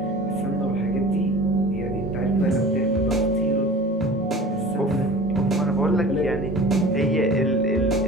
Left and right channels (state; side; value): normal; both; correlation 0.39